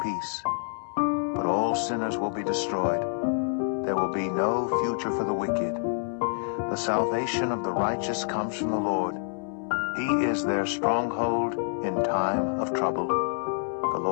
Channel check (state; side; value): silent; right; 60 dB below the other